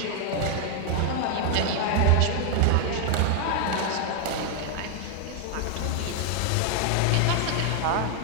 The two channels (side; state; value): both; different; correlation 0.00